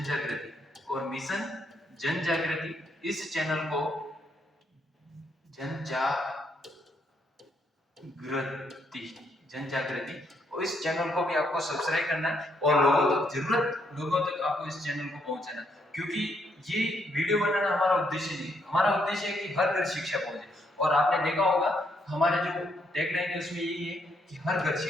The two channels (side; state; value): both; normal; correlation 0.74